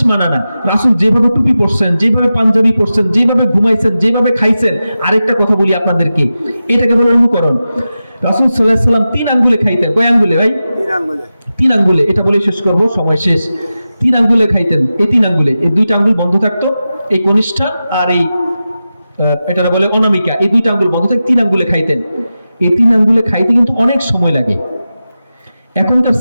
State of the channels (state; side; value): inverted; both; correlation -0.93